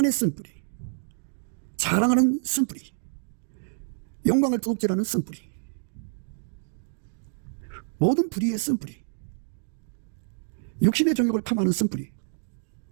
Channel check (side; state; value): left; silent; digital silence